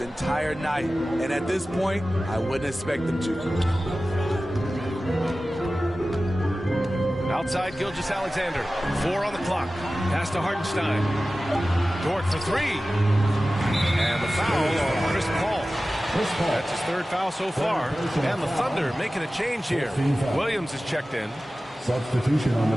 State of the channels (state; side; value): normal; both; correlation 0.96